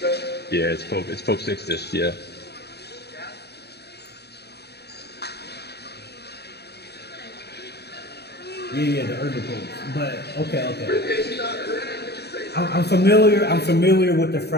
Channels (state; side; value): late; right; 0.48 ms